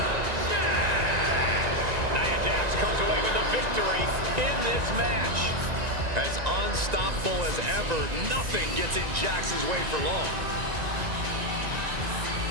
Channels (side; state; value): left; late; 1.9 ms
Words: Jax. Nia Jax comes away with a victory in this match. As unstoppable as ever, nothing gets in Jax's way for long.